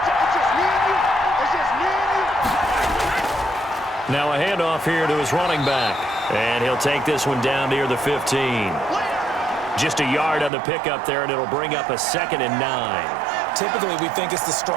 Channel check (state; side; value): drops out; left; at 10.5 s